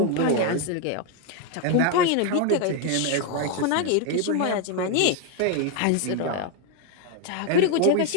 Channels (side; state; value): both; different; correlation 0.01